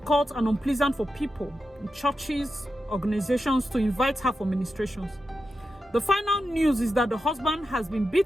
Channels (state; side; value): normal; both; correlation 0.89